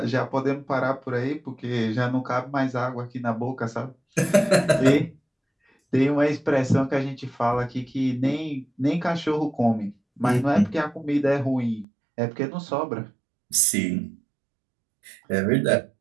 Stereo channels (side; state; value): left; drops out; at 11.9 s